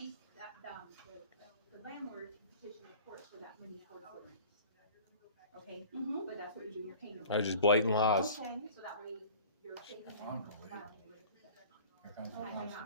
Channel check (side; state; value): both; inverted; correlation -0.44